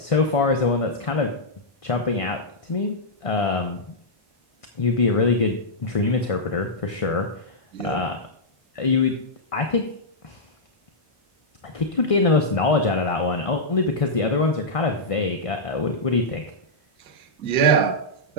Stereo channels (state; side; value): late; right; 1.5 ms